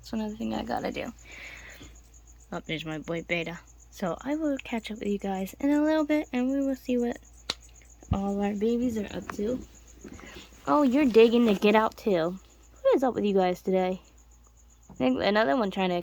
another thing I gotta do. Oh, there's my boy Beta. So I will catch up with you guys in a little bit, and we will see what all our babies are up to. Oh, you're digging to get out too. What is up with you guys today? I think another one trying to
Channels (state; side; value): identical; both; correlation 1.00